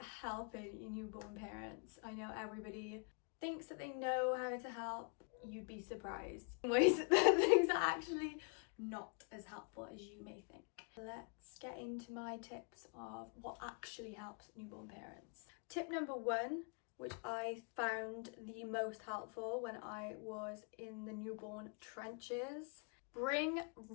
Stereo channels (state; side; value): quieter; right; 37.5 dB